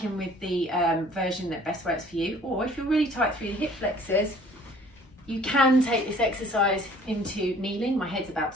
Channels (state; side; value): normal; both; correlation 0.53